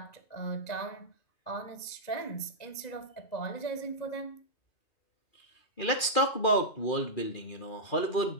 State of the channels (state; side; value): late; right; 2.4 ms